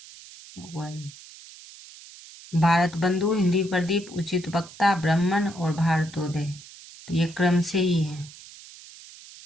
1 भारत बंधु, हिंदी प्रदीप, उचित वक्ता, ब्राह्मण और भारतोदय, तो ये क्रम से ही है।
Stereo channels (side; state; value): right; noise; hiss, 18 dB below the sound